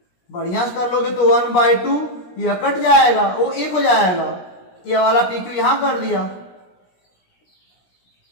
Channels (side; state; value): right; late; 17 ms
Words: बढ़िया से कर लोगे तो 1 बाई 2 यह कट जाएगा, वो 1 हो जाएगा। ये वाला पी क्यू यहां कर दिया,